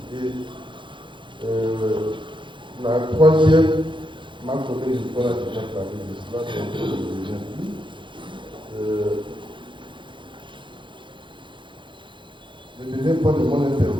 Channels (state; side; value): late; left; 0.23 ms